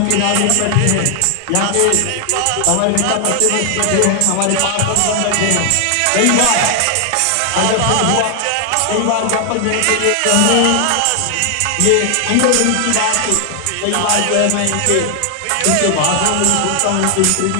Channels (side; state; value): both; different; correlation 0.00